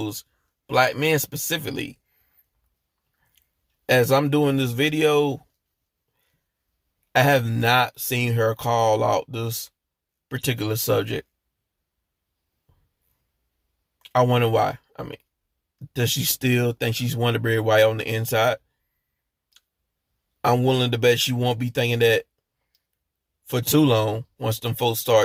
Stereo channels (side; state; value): both; identical; correlation 1.00